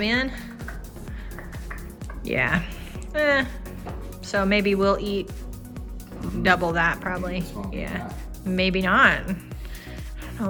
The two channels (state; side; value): identical; both; correlation 1.00